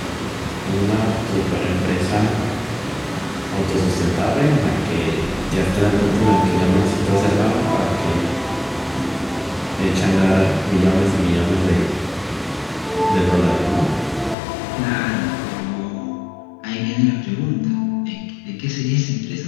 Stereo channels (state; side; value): drops out; right; at 14.4 s